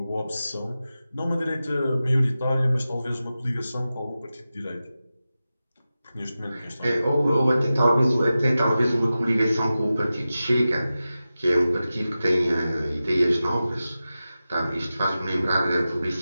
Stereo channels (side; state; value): both; inverted; correlation -0.94